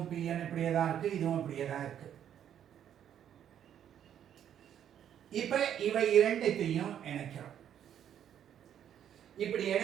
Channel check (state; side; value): quieter; left; 9.8 dB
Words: PN இப்படியே தான் இருக்கு, இதுவும் இப்படியே தான் இருக்கு. இப்ப இவை இரண்டையும் இணைக்கிறோம். இப்படி